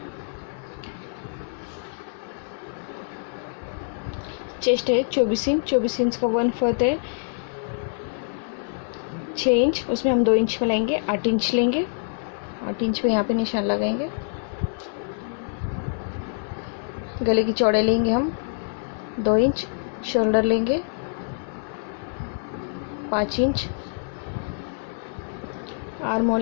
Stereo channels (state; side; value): silent; right; digital silence